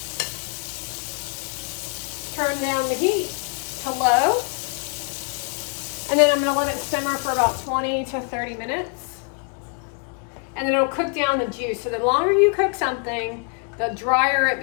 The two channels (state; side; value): quieter; right; 39.3 dB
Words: turn down the heat to low. And then I'm going to let it simmer for about 20 to 30 minutes. And then it'll cook down the juice. So the longer you cook something, the drier it